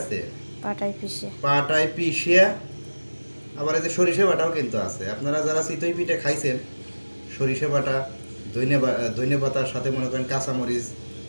পাটায় পিষিয়া আবার এই যে সরিষা বাটাও কিন্তু আছে। আপনারা যারা চিতই পিঠা খাইছেন সরিষা বাটা ধনিয়া পাতার সাথে মনে করেন কাঁচামরিচ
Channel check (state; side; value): inverted; both; correlation -1.00